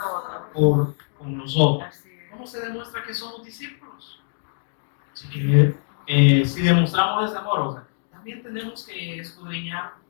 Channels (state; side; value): silent; right; digital silence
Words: con los otros. ¿Cómo se demuestra que somos discípulos? Así que si demostramos ese amor, o sea, también tenemos que escudriñar